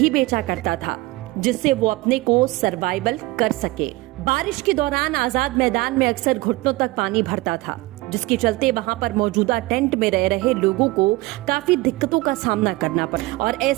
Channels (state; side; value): quieter; left; 21.0 dB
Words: बेचा करता था, जिससे वो अपने को सर्वाइवल कर सके। बारिश के दौरान आजाद मैदान में अक्सर घुटनों तक पानी भरता था, जिसके चलते वहां पर मौजूदा टेंट में रह रहे लोगों को काफी दिक्कतों का सामना करना पड़ा। और